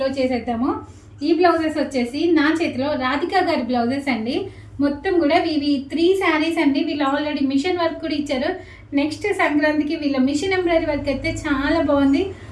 చేసేద్దాము. ఈ బ్లౌజెస్ వచ్చేసి నా చేతిలో రాధిక గారి బ్లౌజెస్ అండి. మొత్తం కూడా ఇవి 3 శారీస్ అండి. వీళ్ళు ఆల్రెడీ మిషన్ వర్క్ కూడా ఇచ్చారు. నెక్స్ట్ సంక్రాంతికి వీళ్ళ మిషన్ ఎంబ్రాయిడరీ వర్క్ అయితే చాలా బాగుంది.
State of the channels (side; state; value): both; identical; correlation 1.00